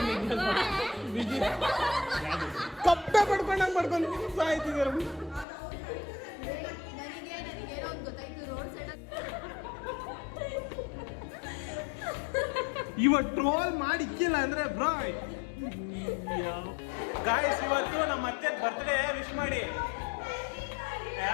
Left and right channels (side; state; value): right; drops out; at 5.5 s